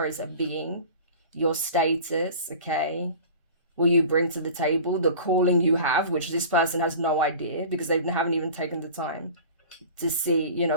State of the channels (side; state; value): both; inverted; correlation -0.39